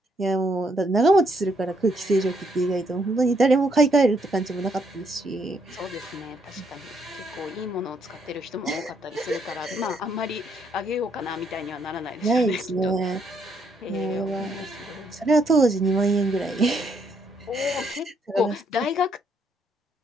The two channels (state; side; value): normal; both; correlation 0.72